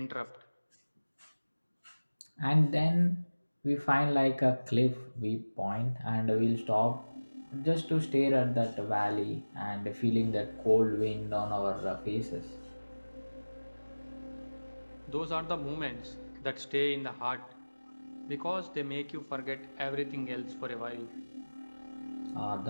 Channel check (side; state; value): both; inverted; correlation -1.00